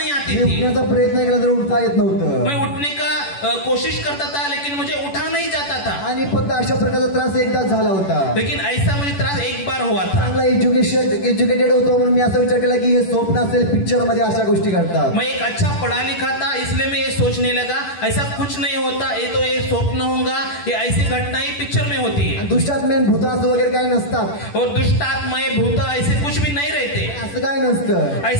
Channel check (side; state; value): right; late; 10 ms